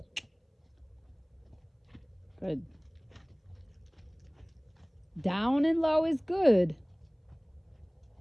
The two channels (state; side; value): identical; both; correlation 1.00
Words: Good. Down and low is good.